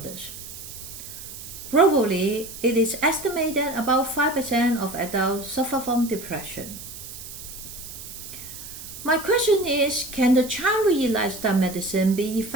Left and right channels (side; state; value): right; noise; hiss, 12 dB below the sound